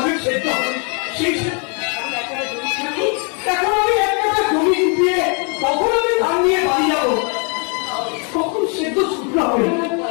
সেদ্ধ হবে, সেই এখন আমি একটা জমি ডুবিয়ে কখন আমি ধান নিয়ে বাড়ি যাবো, কখন সেদ্ধ শুকনো হবে?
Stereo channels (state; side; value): quieter; right; 37.2 dB